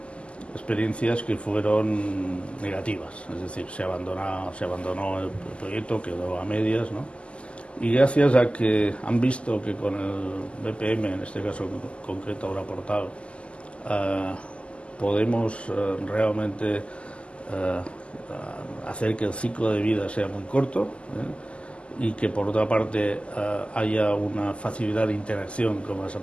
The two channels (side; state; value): right; late; 0.055 ms